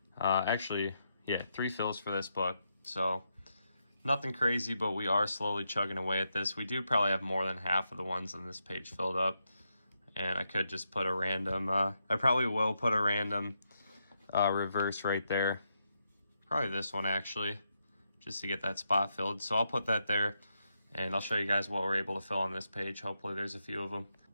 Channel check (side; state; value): both; inverted; correlation -0.83